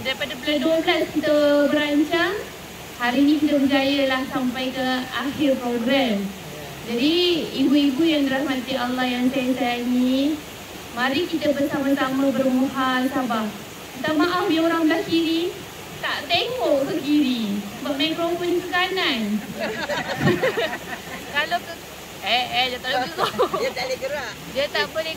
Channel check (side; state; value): both; identical; correlation 1.00